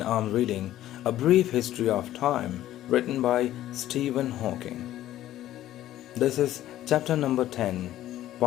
I'm reading A Brief History of Time written by Stephen Hawking. This is chapter number 10,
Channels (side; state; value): right; quieter; 13.5 dB